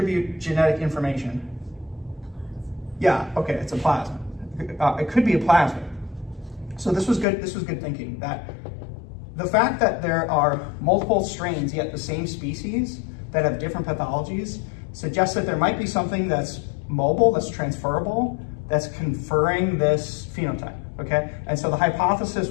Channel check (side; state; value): right; drops out; at 7.2 s